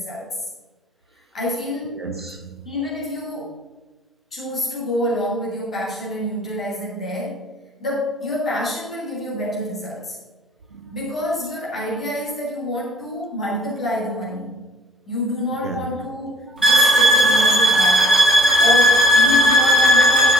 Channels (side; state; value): both; normal; correlation 0.56